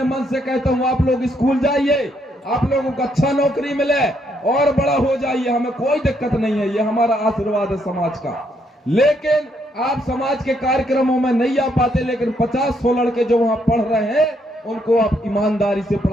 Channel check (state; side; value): normal; both; correlation 0.74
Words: मन से कहता हूं आप लोग स्कूल जाइए, आप लोगों को अच्छा नौकरी मिले और बड़ा हो जाइए, हमें कोई दिक्कत नहीं है, ये हमारा आशीर्वाद है समाज का। लेकिन आप समाज के कार्यक्रमों में नहीं आ पाते, लेकिन 50-100 लड़के जो वहां पढ़ रहे हैं उनको आप ईमानदारी से